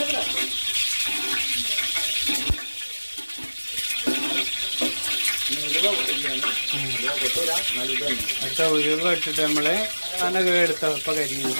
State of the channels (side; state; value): both; inverted; correlation -1.00